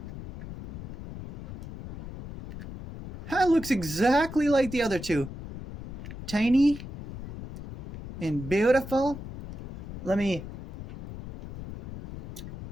That looks exactly like the other two. Tiny. and beautiful. Let me...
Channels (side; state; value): left; noise; rumble, 11 dB below the sound